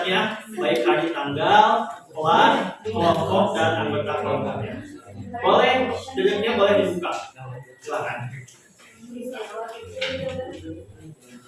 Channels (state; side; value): identical; both; correlation 1.00